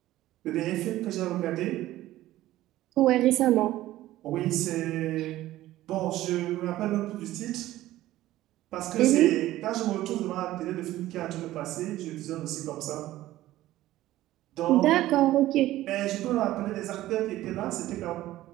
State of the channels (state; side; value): quieter; left; 15.3 dB